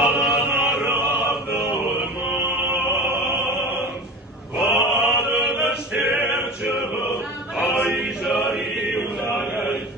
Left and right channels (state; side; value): normal; both; correlation 0.32